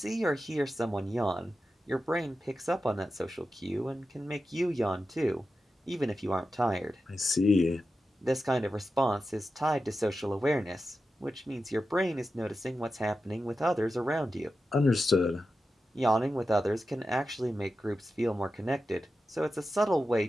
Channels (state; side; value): normal; both; correlation 0.91